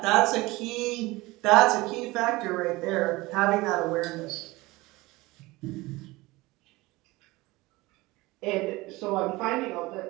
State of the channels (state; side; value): quieter; left; 21.1 dB